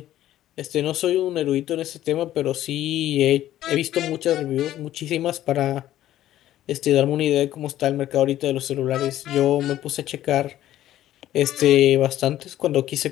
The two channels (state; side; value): quieter; right; 13.2 dB